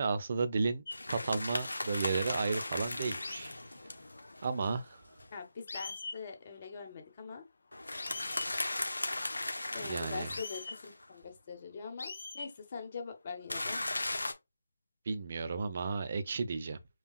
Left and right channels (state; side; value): inverted; both; correlation -0.87